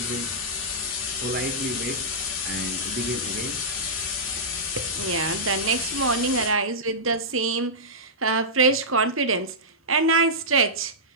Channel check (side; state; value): both; normal; correlation -0.14